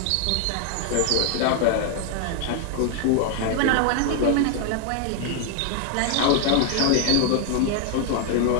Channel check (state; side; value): different; both; correlation 0.00